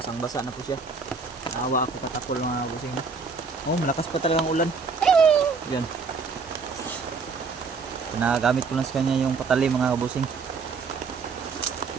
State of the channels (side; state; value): left; quieter; 4.8 dB